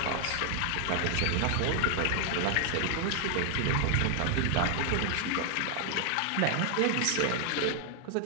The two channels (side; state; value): both; different; correlation 0.00